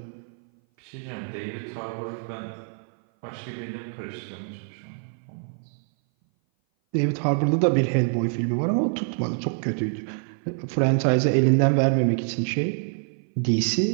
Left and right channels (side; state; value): left; silent; 58 dB below the other